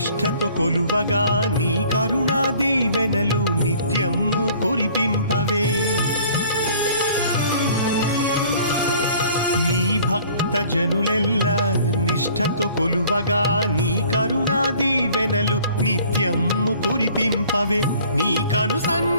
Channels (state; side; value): inverted; both; correlation -0.53